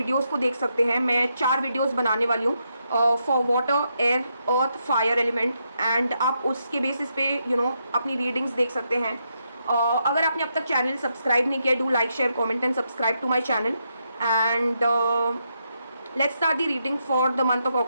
को देख सकते हैं। मैं 4 वीडियोस बनाने वाली हूँ for water, air, earth, fire element, and आप उसके बेसिस पे अपनी रीडिंग्स देख सकते हैं। अगर आपने अब तक चैनल सब्सक्राइब नहीं किया, do like, share, comment and subscribe to my channel. And let's start the reading for the month of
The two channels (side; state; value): both; inverted; correlation -0.81